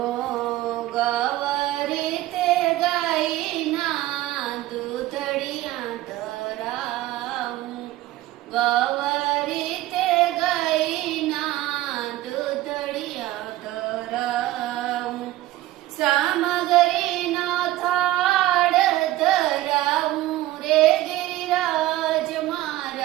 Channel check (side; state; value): left; quieter; 16.0 dB